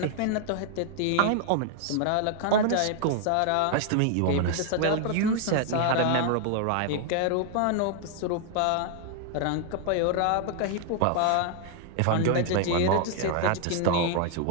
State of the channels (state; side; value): different; both; correlation 0.00